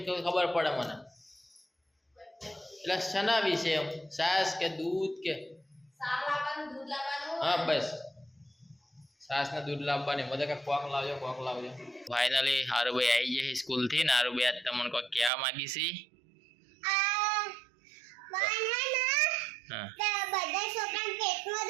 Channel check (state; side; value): drops out; left; at 15.3 s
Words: ખબર પડે મને. એટલે શના વિશે એમ? છાશ કે દૂધ કે? હા બસ છાશ ને દૂધ લાવવાની. મને કે કોક લાવજો કોક લાવજો. ફાઇનલી હારુભાઈ આવી જાય સ્કૂલ થી. ને હારુભાઈ આજ તમને કોઈ કહેવા માંગી છે? બધા છોકરા પેટમાં